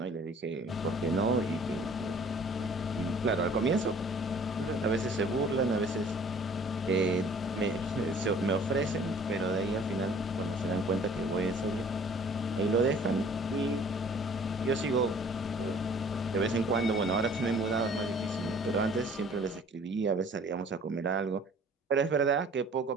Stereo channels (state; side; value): normal; both; correlation 0.53